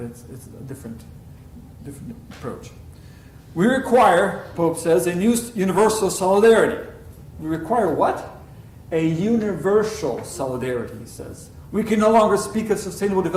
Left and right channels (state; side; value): identical; both; correlation 1.00